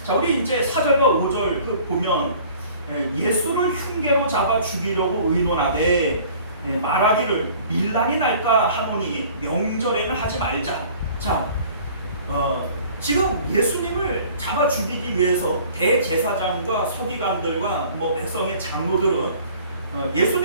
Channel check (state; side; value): inverted; both; correlation -0.50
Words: 자, 우리 이제 4절과 5절 그 보면 예수를 흉계로 잡아 죽이려고 의논하되 말하기를 밀란이 날까 하노니 명절에는 하지 말자. 자, 지금 예수님을 잡아 죽이기 위해서 대제사장과 서기관들과 뭐 백성의 장로들은